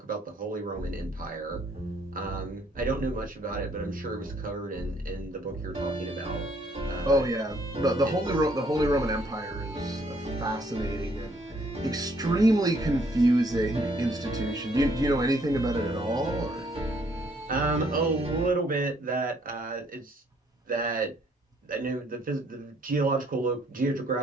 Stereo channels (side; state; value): both; normal; correlation 0.66